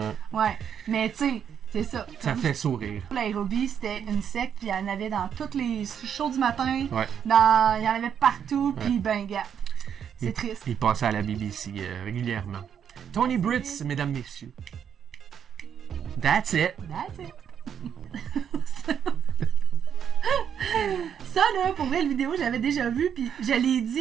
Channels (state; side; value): quieter; left; 8.3 dB